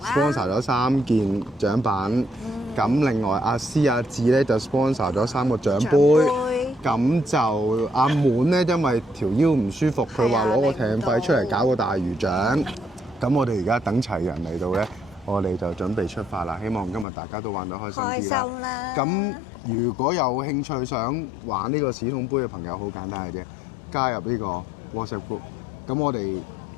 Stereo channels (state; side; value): drops out; right; at 17.1 s